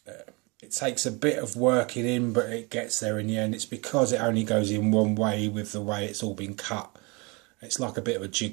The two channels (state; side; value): quieter; left; 28.2 dB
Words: It takes a bit of working in, but it gets there in the end. It's because it only goes in one way with the way it's all been cut. It's like a bit of a